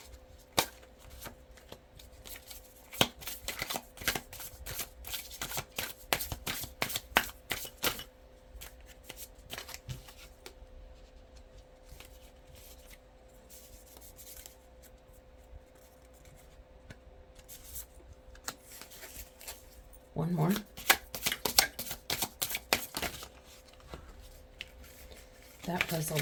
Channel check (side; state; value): both; identical; correlation 1.00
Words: One more. That was